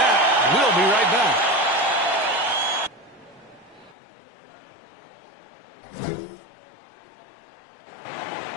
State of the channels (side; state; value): right; drops out; at 4.0 s